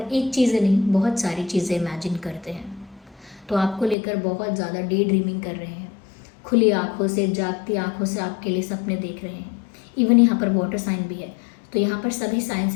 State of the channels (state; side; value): drops out; right; at 4.0 s